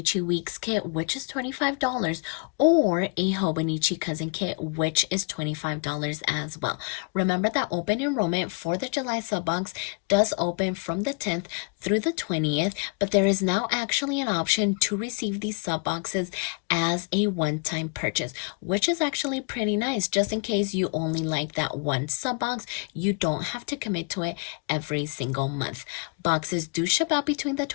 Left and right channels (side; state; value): right; quieter; 36.3 dB